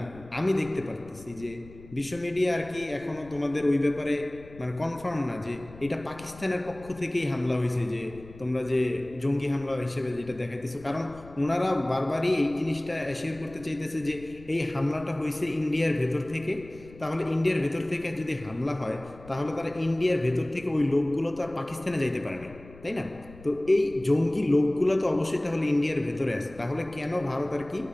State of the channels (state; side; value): noise; left; rumble, 19 dB below the sound